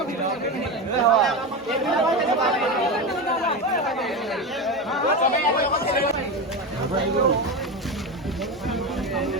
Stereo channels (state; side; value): normal; both; correlation 0.19